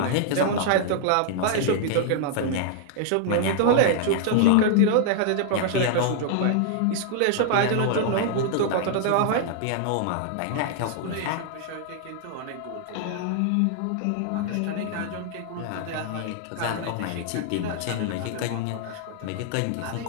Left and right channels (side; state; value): both; different; correlation -0.01